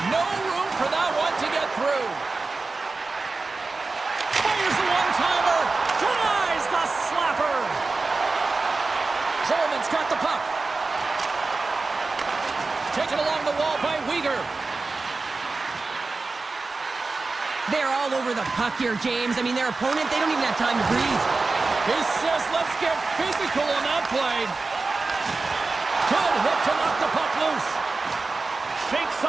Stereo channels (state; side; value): quieter; left; 3.8 dB